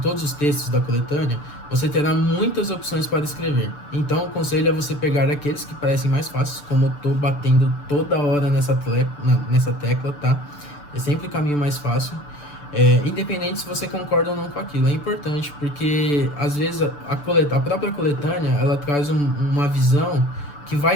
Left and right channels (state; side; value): late; right; 6.9 ms